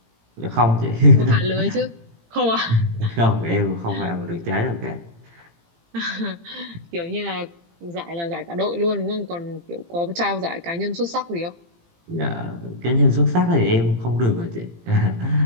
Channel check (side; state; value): left; late; 18 ms